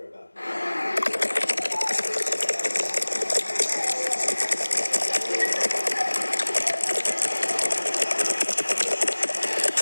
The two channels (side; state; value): both; inverted; correlation -1.00